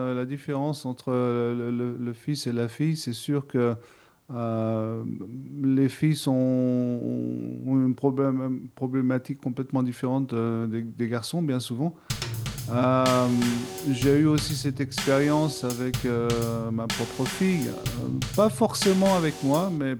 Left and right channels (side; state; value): both; identical; correlation 1.00